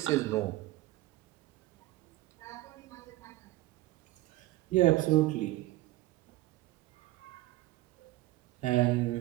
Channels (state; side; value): quieter; left; 17.7 dB